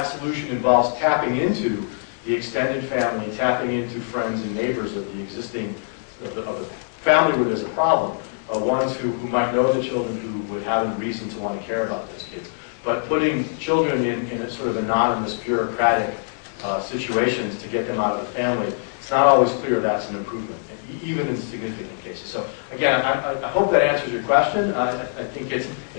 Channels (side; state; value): right; silent; digital silence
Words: solution involves tapping into the extended family, tapping into friends and neighbors of the existing, of the family where there's a problem, ones who might know the children, who would have a reason to want to care about those kids. But putting children in a sort of anonymous, bureaucratic situations to get them out of the family, it's not always clear that's an improvement, even in significant cases. So again, I hope that answers your question. I think